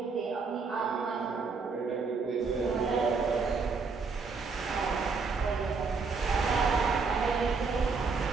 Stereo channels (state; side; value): quieter; left; 4.7 dB